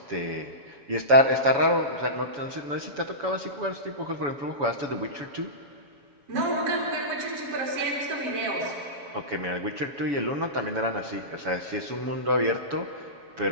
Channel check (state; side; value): late; left; 7.1 ms